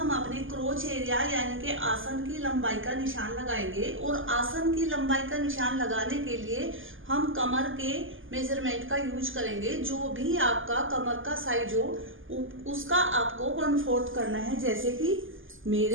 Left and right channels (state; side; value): late; left; 0.58 ms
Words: अपने क्रोच एरिया यानी कि आसन की लंबाई का निशान लगाएंगे। और आसन की लंबाई का निशान लगाने के लिए हम कमर के मेजरमेंट का यूज करेंगे। जो भी आपका कमर का साइज हो उसका आपको 1/4 करना है। जैसे कि